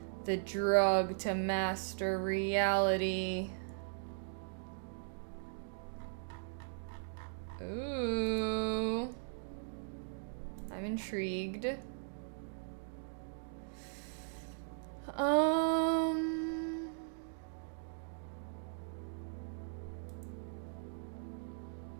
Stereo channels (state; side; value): silent; left; digital silence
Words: The drug to master reality. Ooh. I'm intrigued.